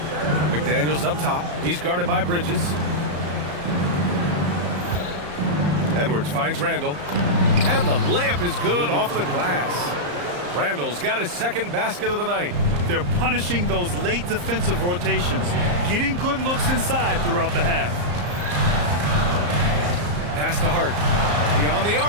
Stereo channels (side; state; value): left; late; 34 ms